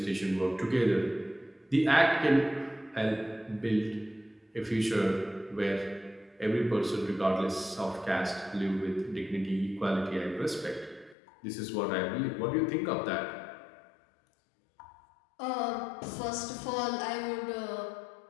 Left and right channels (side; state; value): right; drops out; at 11.2 s